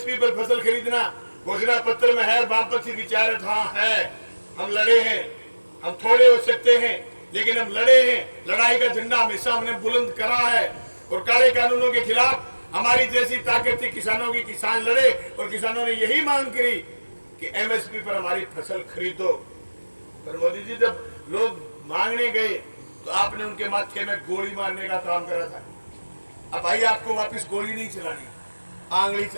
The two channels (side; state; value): both; inverted; correlation -1.00